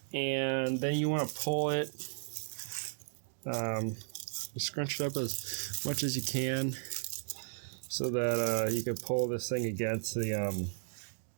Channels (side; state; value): left; silent; digital silence